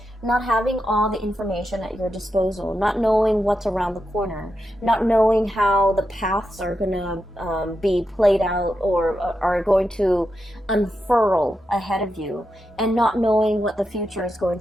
Not having all the information at your disposal, not knowing what's around the corner, not knowing how the paths are going to be played out or are going to unfurl ahead of you, and not knowing what the future is going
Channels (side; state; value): both; normal; correlation 0.87